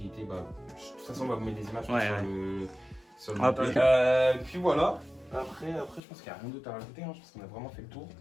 était. Bah, de toute façon, on va vous mettre des images sur le Ah, montage. Puis voilà. Après, je pense qu'il n'y a rien d'autre à rajouter. Hein. Je pense qu'on a vraiment fait le tour.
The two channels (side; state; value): right; drops out; at 6.0 s